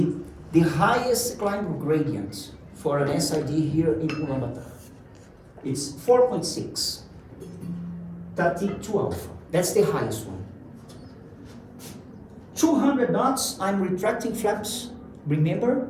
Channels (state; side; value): identical; both; correlation 1.00